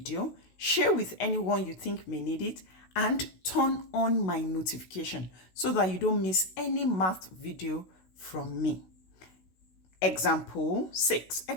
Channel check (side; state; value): right; late; 16 ms